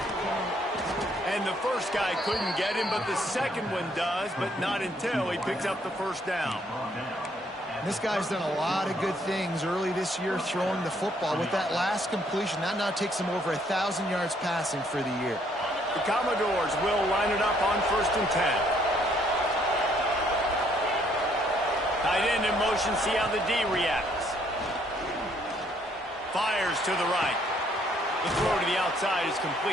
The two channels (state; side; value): normal; both; correlation 0.67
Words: And the first guy couldn't get him, but the second one does, but not until he picks up the first down. This guy's done a lot of good things early this year throwing the football. With that last completion, that now takes him over 1,000 yards passing for the year. The Commodores will line it up on 1st and 10. Tight end in motion, see how the D reacts. Fires to the right. The throw to the outside is